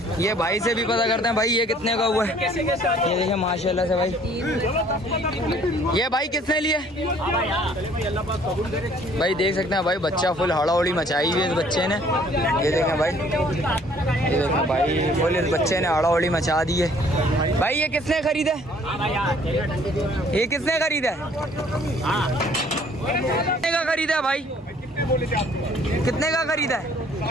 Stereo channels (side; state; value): both; normal; correlation 0.58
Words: ये भाई से भी पता करते हैं भाई ये कितने का हुआ है। ये देखिए माशाल्लाह से भाई। ये भाई किसने लिए भाई? देख सकते हैं भाई बच्चा फुल हड़ाउड़ी मचाई हुई है इस बच्चे ने। ये देखें भाई, ये देखें भाई फुल इस बच्चे ने हड़ाउड़ी मचा दी है भाई। ये किसने खरीदा? ये किसने खरीदा? कितने का खरीदा है भाई? कितने का खरीदा है?